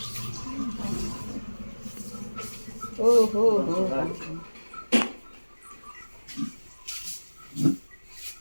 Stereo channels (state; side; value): inverted; both; correlation -1.00